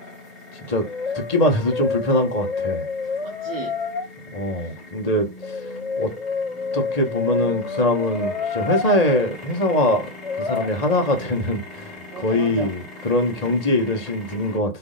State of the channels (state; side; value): late; left; 1.9 ms